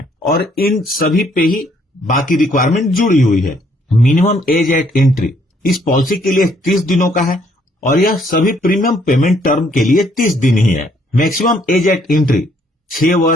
और इन सभी पे ही बाकी रिक्वायरमेंट जुड़ी हुई है। मिनिमम एज एट एंट्री इस पॉलिसी के लिए 30 दिनों का है, और यह सभी प्रीमियम पेमेंट टर्म के लिए 30 दिन ही है। मैक्सिमम एज एट एंट्री 6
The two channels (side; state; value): both; normal; correlation 0.67